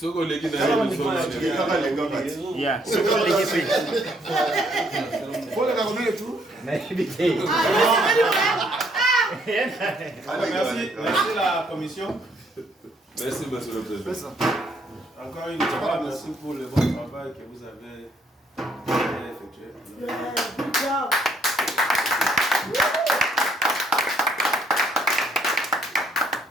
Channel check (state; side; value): normal; both; correlation 0.68